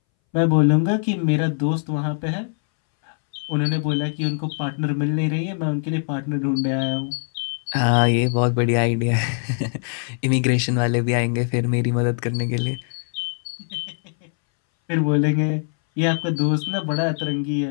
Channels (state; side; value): silent; right; 62 dB below the other